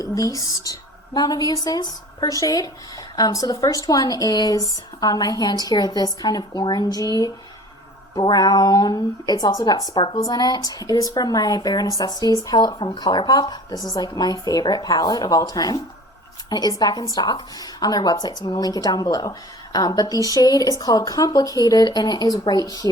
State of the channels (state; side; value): normal; both; correlation 0.44